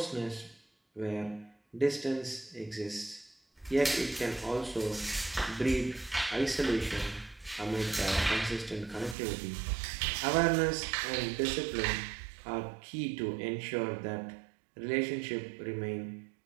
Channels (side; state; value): left; drops out; at 9.2 s